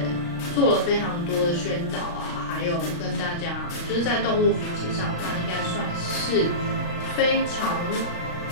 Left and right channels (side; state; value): right; late; 35 ms